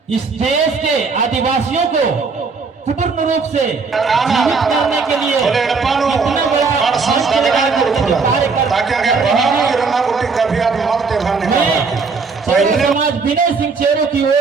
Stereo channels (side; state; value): left; quieter; 4.7 dB